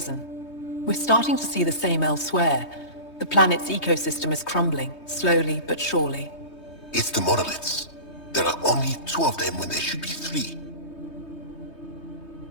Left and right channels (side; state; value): right; late; 3.2 ms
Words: We're starting to see the same elsewhere. The planet's ecosystem is crumbling, slowly but surely. It's the monoliths. There are only 2 of them when there should be 3.